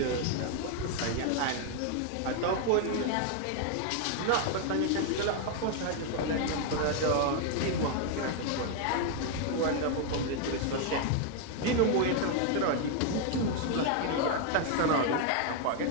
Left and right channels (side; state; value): both; different; correlation 0.00